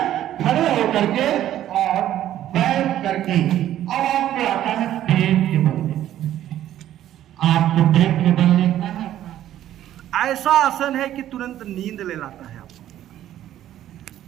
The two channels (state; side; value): quieter; left; 12.2 dB